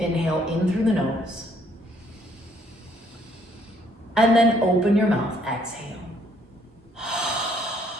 in through the nose. And then open your mouth, exhale.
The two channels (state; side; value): normal; both; correlation 0.66